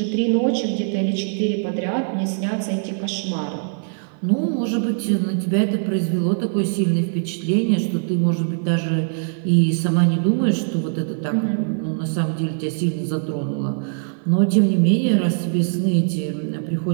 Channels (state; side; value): silent; left; 55 dB below the other